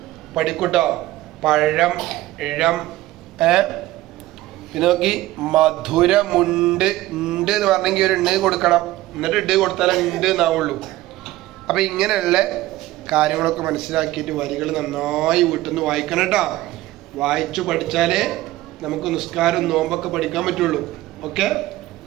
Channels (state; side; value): quieter; left; 16.8 dB